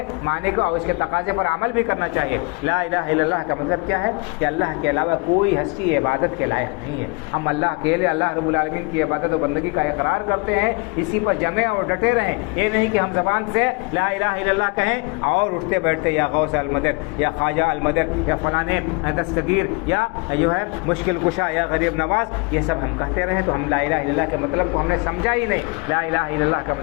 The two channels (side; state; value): right; quieter; 29.9 dB